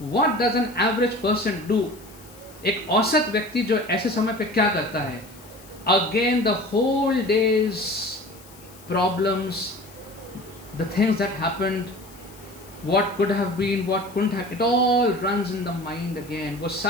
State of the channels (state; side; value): noise; left; hiss, 22 dB below the sound